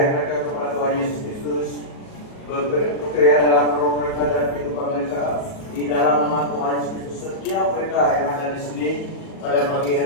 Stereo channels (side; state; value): right; late; 38 ms